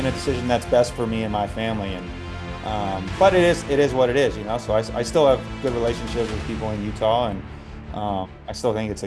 a decision that's best for me and my family. And but it is what it is, So I still have good relationships with people in Utah, and I still think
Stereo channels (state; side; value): identical; both; correlation 1.00